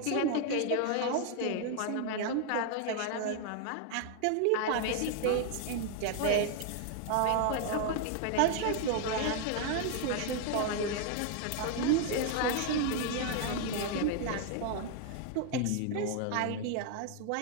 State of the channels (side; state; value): both; different; correlation 0.00